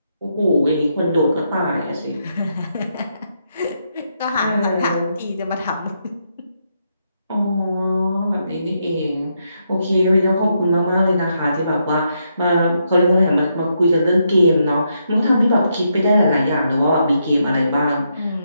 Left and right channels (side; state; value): both; inverted; correlation -0.80